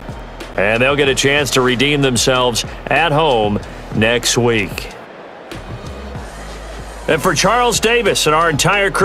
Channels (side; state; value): both; identical; correlation 1.00